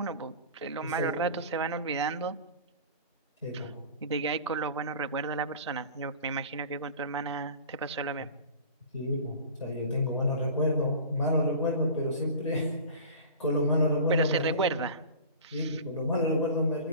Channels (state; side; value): inverted; both; correlation -0.38